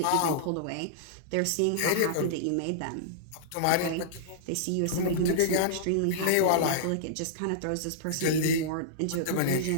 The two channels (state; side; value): different; both; correlation -0.02